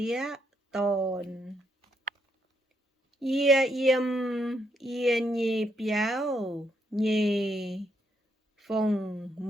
tôn. Ia yếm ia nhì biao nhì phùng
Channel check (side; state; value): both; normal; correlation 0.76